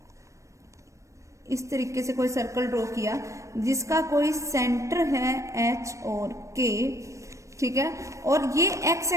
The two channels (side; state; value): left; late; 0.15 ms